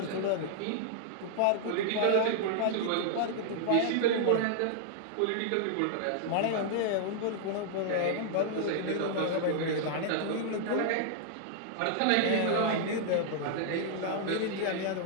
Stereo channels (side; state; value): both; different; correlation -0.01